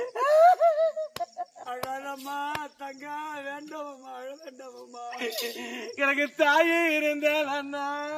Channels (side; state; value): both; identical; correlation 1.00